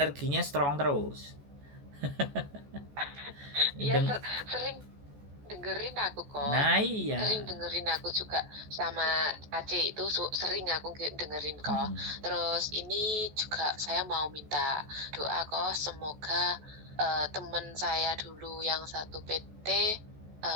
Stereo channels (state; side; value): late; left; 14 ms